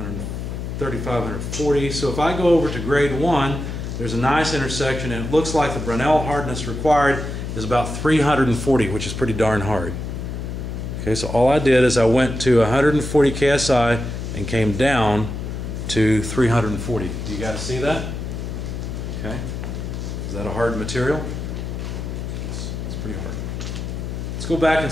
140. So if I go over to grade 1, there's a nice intersection, and it looks like the Brunel hardness required is about 340, which is pretty darn hard. Okay, so all I did is I went to 140 KSI and came down to 340. Do you guys see that? Okay. Is that a hard material? Yes, it's pretty hard. Let's go back and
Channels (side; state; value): left; noise; hum, 5 dB below the sound